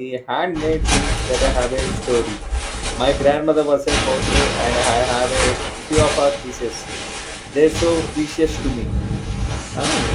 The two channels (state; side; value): identical; both; correlation 1.00